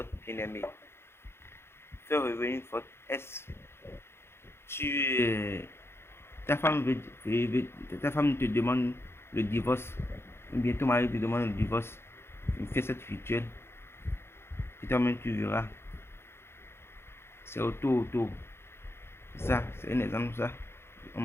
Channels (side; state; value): right; late; 0.12 ms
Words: bien-aimé. Faire revenir votre ex. Ta femme te demande le divorce, ou bien ton mari te demande le divorce. Fais cette rituel et toi-même tu verras. C'est auto. Ça, c'est un exemple, ça. On